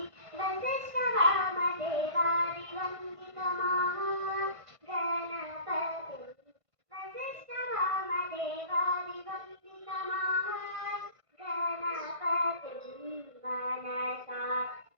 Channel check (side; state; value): left; late; 1.5 ms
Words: వశిష్ఠ వామదేవాది వందిత మహాగణపతి, వశిష్ఠ వామదేవాది వందిత మహాగణపతి మనసా